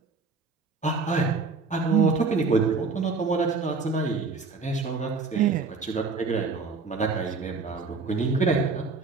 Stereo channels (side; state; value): left; quieter; 4.3 dB